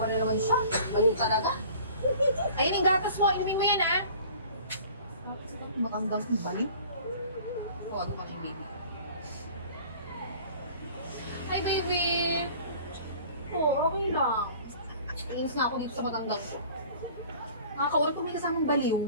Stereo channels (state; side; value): inverted; both; correlation -0.47